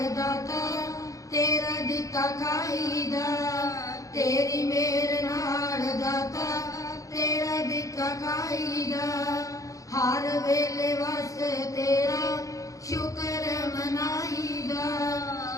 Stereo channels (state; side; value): late; right; 0.16 ms